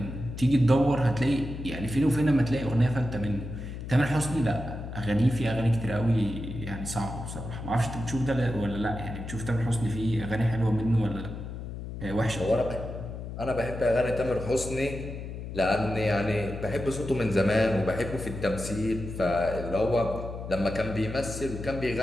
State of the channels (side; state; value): left; noise; hum, 8 dB below the sound